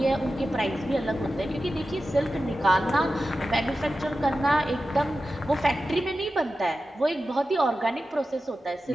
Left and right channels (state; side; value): normal; both; correlation 0.93